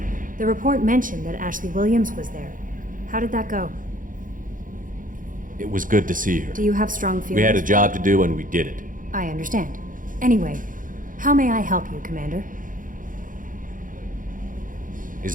The report mentioned that Ashley Williams was there. How did that go? It was good to see her. Do you have strong feelings? We had a job to do and we did it. I understand. Anyway, How may I help you, Commander? Is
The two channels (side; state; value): left; late; 0.39 ms